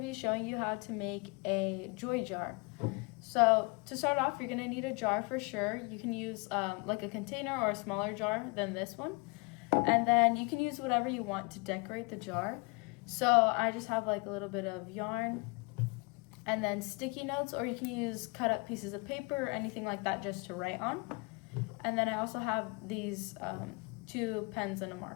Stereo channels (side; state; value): right; quieter; 29.7 dB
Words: showing you how to make a joy jar. So to start off, you're going to need a jar for sure. You can use like a container or a smaller jar than this one. And then you can use whatever you want to decorate the jar. So I just have like a little bit of yarn and then sticky notes, or you can use cut up pieces of paper or anything like that just to write on. And then I also have these 2 pens and a